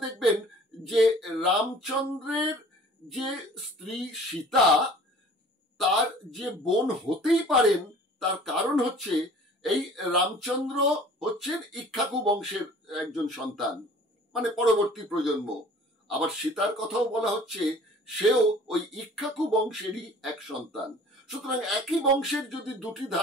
দেখবেন যে রামচন্দ্রের যে স্ত্রী সীতা, তার যে বোন হতেই পারেন, তার কারণ হচ্ছে এই রামচন্দ্র হচ্ছেন ইক্ষ্বাকু বংশের একজন সন্তান, মানে পরবর্তী প্রজন্ম। আবার সীতার কথাও বলা হচ্ছে সেও ওই ইক্ষ্বাকু বংশেরই এক সন্তান। সুতরাং একই বংশের যদি দুটি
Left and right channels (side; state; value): both; normal; correlation 0.48